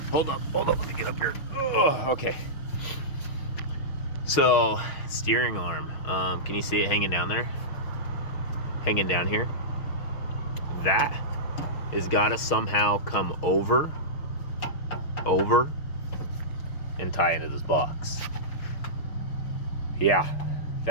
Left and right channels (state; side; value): late; right; 6.4 ms